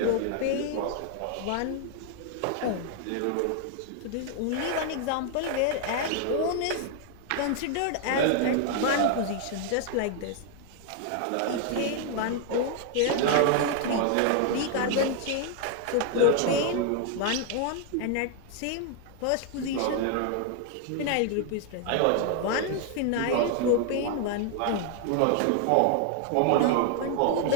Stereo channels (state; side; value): different; both; correlation 0.00